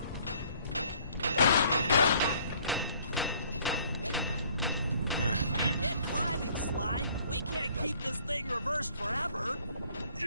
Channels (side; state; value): both; inverted; correlation -0.59